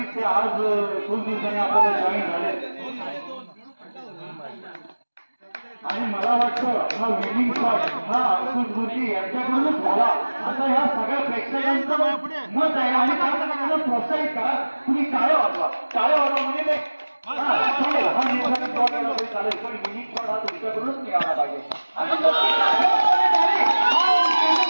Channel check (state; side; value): inverted; both; correlation -1.00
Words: ते आज खूप दिवसांनी आपल्याला जॉईन झाले आणि मला वाटतं हा विनिंग शॉट हा अंकुश गुरुजी यांच्याकडूनच झाला आता ह्या सगळ्या प्रेक्षकांचं मत आहे आणि त्याला प्रोत्साहित करा. तुम्ही टाळ्या वाजवा, टाळ्या वाजवा म्हणजे ते चालेल, हा निर्धारित शॉट केला तरी चालेल, पण विनिंग शॉट हा तुमच्याकडूनच निघाला पाहिजे.